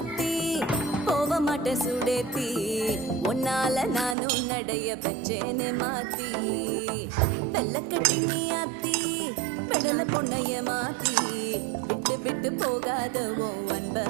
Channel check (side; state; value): left; drops out; at 4.2 s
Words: ஆத்தி போக மாட்ட சுடேத்தி உன்னால நானும் நடைய பெற்றேன்னு மாத்தி வெள்ளக்கட்டி நீ ஆத்தி பெடல பொண்ணைய மாத்தி விட்டு விட்டு போகாத ஓ அன்ப